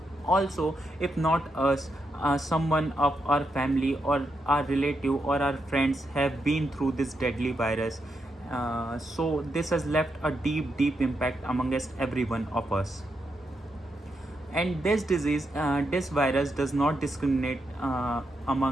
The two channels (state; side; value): normal; both; correlation 0.82